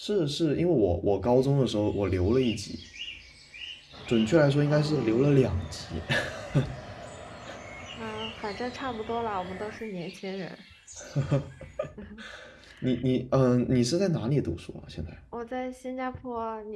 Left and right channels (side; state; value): both; identical; correlation 1.00